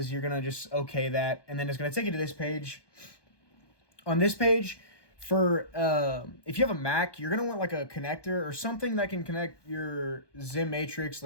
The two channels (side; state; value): right; late; 1.2 ms